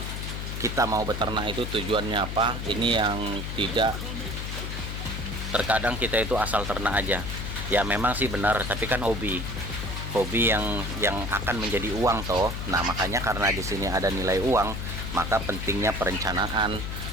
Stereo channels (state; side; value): noise; left; hum, 5 dB below the sound